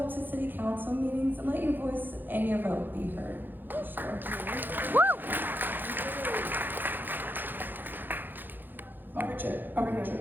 to city council meetings and let your voice and your vote be heard. Sure. Check.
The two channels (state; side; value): late; left; 0.091 ms